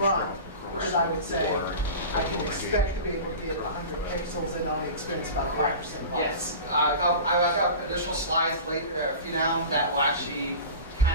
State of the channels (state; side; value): inverted; both; correlation -0.33